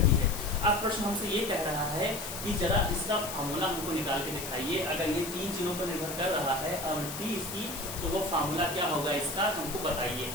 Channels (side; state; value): left; noise; hiss, 8 dB below the sound